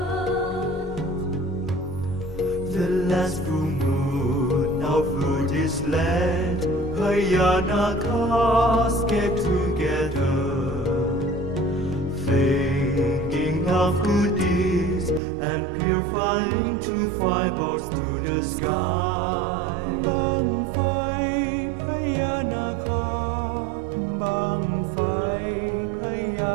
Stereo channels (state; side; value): drops out; left; at 15.2 s